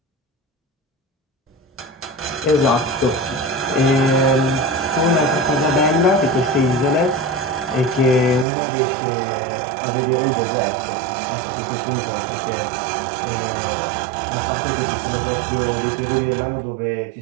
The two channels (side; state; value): left; drops out; at 8.5 s